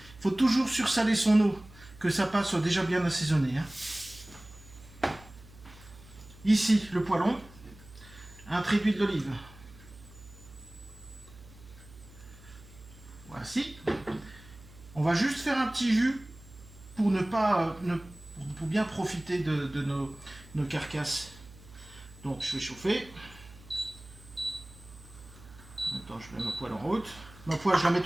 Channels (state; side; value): noise; right; hum, 20 dB below the sound